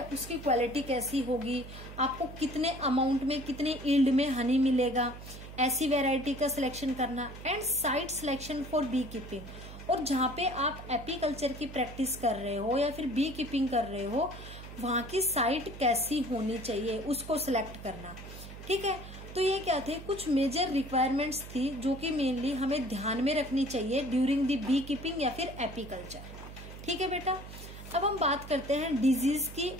उसकी क्वालिटी कैसी होगी, आपको कितने अमाउंट में कितने यील्ड में हनी मिलेगा, ऐसी वैरायटी का सिलेक्शन करना। And site selection for beekeeping, और जहाँ पे आप एपीकल्चर की प्रैक्टिस कर रहे हो या फिर बी कीपिंग कर रहे हो, वहां की साइट कैसी होनी चाहिए उसको सिलेक्ट करना। ठीक है, तो ये क्या थे, कुछ मेजर रिक्वायरमेंट्स थी जो कि मेनली हमें ध्यान में रखनी चाहिए ड्यूरिंग द बी कीपिंग या फिर एपीकल्चर। ठीक है बेटा, अब हम बात करते हैं डिजीज की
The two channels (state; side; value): noise; right; hum, 13 dB below the sound